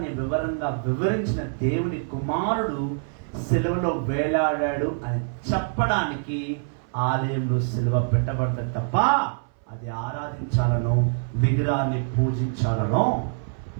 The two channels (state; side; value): silent; left; 58 dB below the other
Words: వివరంగా వివరించిన దేవుడి కుమారుడు సిలువలో వేలాడాడు అని చెప్పడానికి ఆలయంలో సిలువ పెట్టబడ్డ తప్ప అది ఆరాధించాలనో విగ్రహాన్ని పూజించాలనో